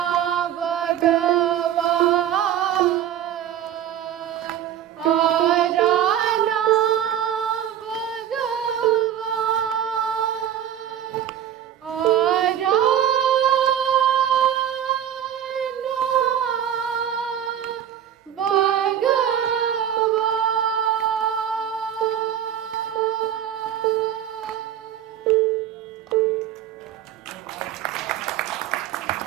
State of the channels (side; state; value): left; quieter; 10.2 dB